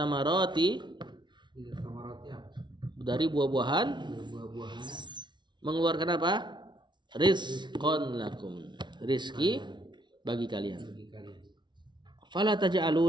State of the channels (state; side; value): late; left; 0.22 ms